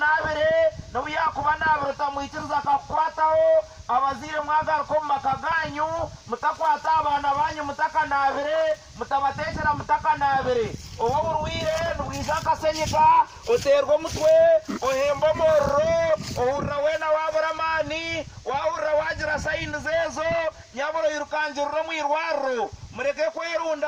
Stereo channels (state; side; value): identical; both; correlation 1.00